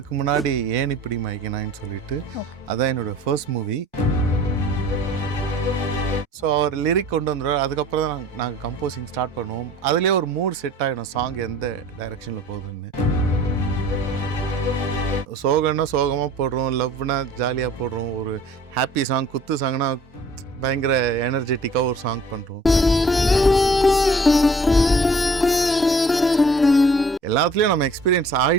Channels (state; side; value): normal; both; correlation 0.50